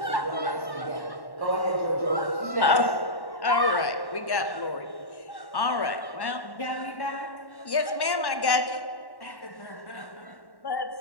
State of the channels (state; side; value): late; right; 1.1 ms